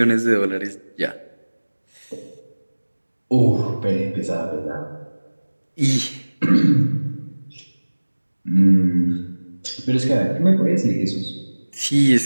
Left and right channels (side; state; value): both; inverted; correlation -1.00